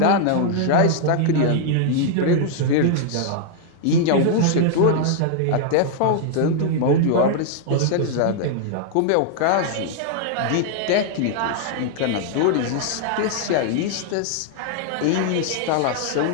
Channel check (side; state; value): both; different; correlation 0.00